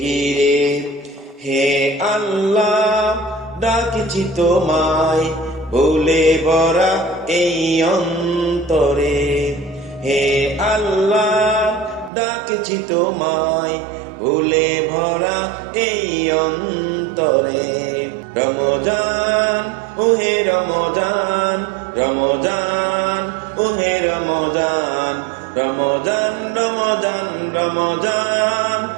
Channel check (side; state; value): left; drops out; at 12.1 s